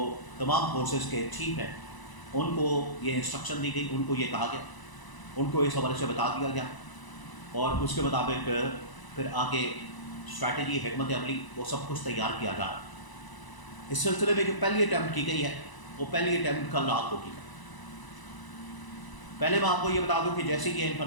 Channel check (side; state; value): right; late; 1.0 ms